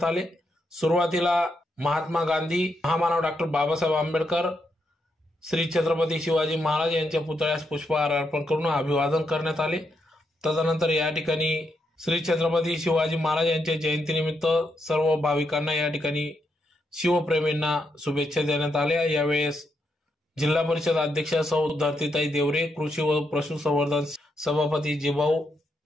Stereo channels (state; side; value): normal; both; correlation 0.81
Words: आले। सुरुवातीला महात्मा गांधी, महामानव डॉक्टर बाबासाहेब आंबेडकर, श्री छत्रपती शिवाजी महाराज यांच्या पुतळ्यास पुष्पहार अर्पण करून अभिवादन करण्यात आले। तदनंतर या ठिकाणी श्री छत्रपती शिवाजी महाराज यांच्या जयंतीनिमित्त सर्व भाविकांना या ठिकाणी शिवप्रेमींना शुभेच्छा देण्यात आल्या। यावेळेस जिल्हा परिषद अध्यक्ष सौ धरतीताई देवरे, कृषी व पशुसंवर्धन सभापती जिभाऊ